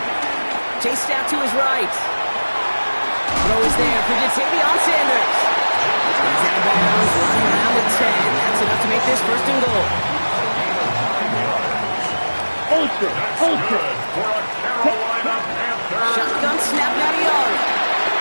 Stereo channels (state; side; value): inverted; both; correlation -1.00